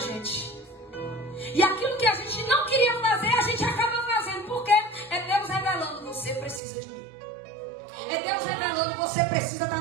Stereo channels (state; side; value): drops out; left; at 6.6 s